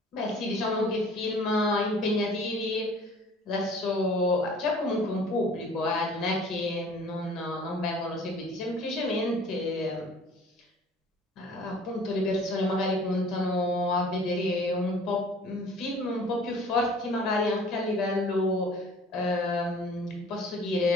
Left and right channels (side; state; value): both; normal; correlation 0.50